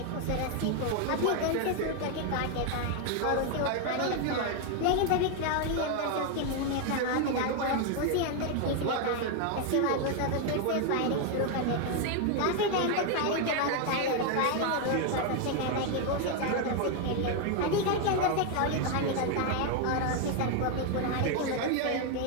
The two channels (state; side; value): different; both; correlation 0.01